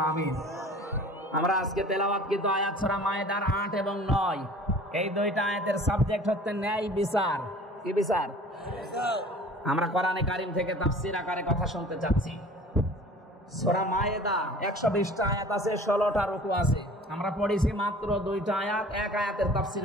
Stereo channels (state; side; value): normal; both; correlation 0.45